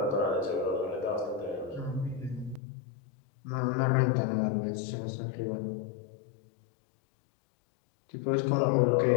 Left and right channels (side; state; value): right; drops out; at 2.6 s